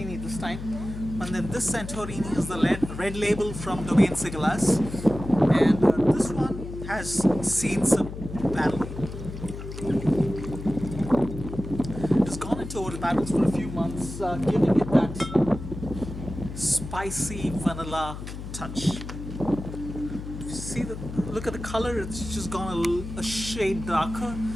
this time, and then this Santorini is the red label from Domaine Sigalas, and this one has seen some battle. It's gone into old barrels for a few months, giving it that spicy vanilla touch. Look at the color, it's just gone a shade darker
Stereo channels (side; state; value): left; noise; hum, 9 dB below the sound